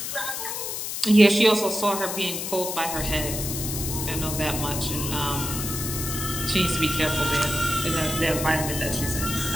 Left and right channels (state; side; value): noise; left; hiss, 4 dB below the sound